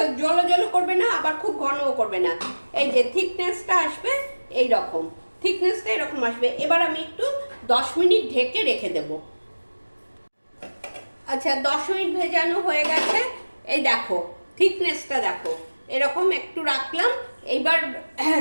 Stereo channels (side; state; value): both; inverted; correlation -1.00